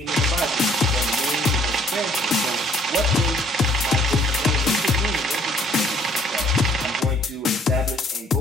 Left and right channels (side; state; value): both; normal; correlation 0.61